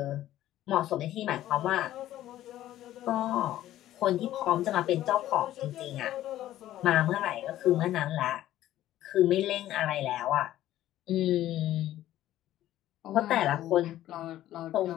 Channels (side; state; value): right; quieter; 13.5 dB